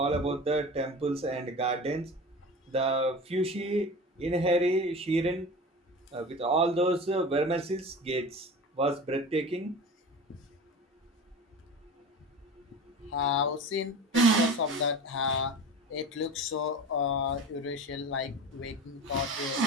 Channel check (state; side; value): normal; both; correlation 0.33